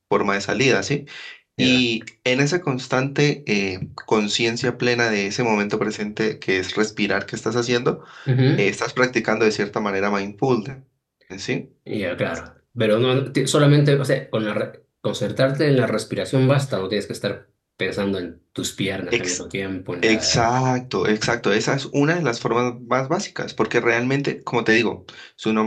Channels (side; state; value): both; identical; correlation 1.00